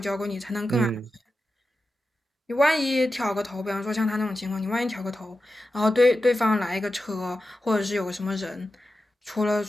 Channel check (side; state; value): both; normal; correlation 0.91